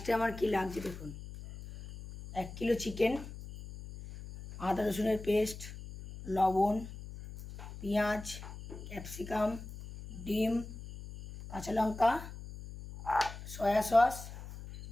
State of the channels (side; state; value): left; noise; hum, 12 dB below the sound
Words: আমার কি লাগছে দেখুন, 1 কিলো চিকেন, আদা রসুনের পেস্ট, লবণ, পেঁয়াজ, ক্যাপসিকাম, ডিম, কাঁচা লঙ্কা, soya sauce,